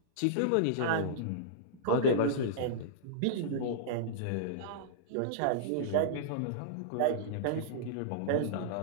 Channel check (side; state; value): both; different; correlation -0.03